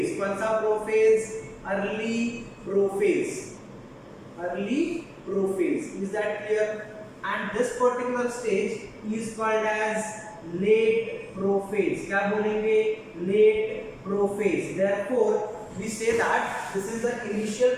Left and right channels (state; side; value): identical; both; correlation 1.00